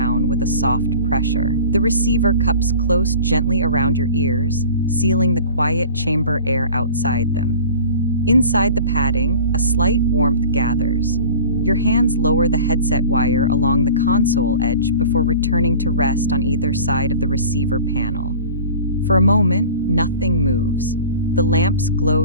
with a soft pressure. The receiver cups close gently around your ears, sealing the quiet chamber air outside them. Inside the padding, a slight warmth gathers. Your hands lower the headset wire along the console edge before returning to rest on either side of the receiver panel. For a moment, nothing moves. The lamps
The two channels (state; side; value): inverted; both; correlation -0.42